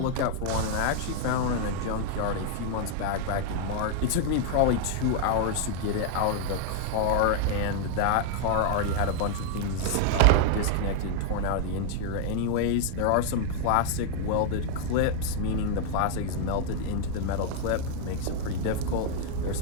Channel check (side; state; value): both; different; correlation 0.00